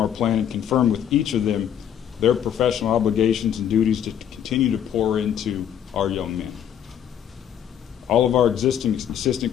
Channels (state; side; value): quieter; right; 9.5 dB